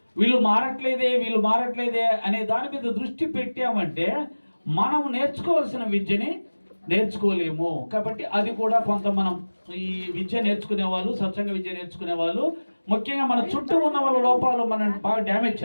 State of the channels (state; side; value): inverted; both; correlation -1.00